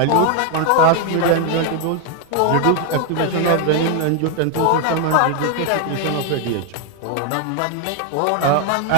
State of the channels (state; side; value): different; both; correlation 0.00